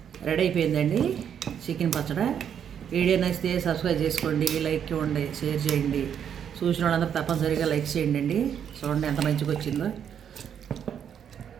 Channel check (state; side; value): quieter; left; 8.5 dB